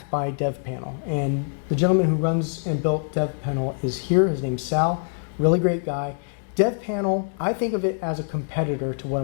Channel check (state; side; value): silent; right; digital silence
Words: by DevPanel. And the gentleman who runs and built DevPanel is here. His name's Sal, really great guy. DevPanel, I think of it as a competitor to what